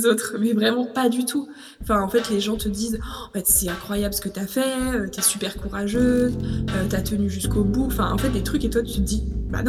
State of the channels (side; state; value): both; identical; correlation 1.00